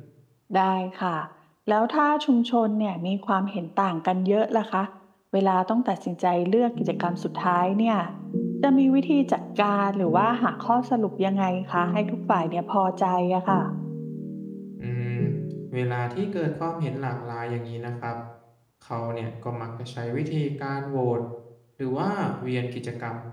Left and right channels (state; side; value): identical; both; correlation 1.00